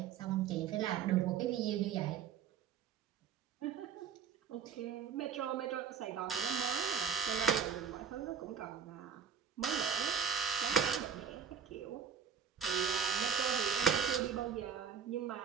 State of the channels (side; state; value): left; quieter; 7.2 dB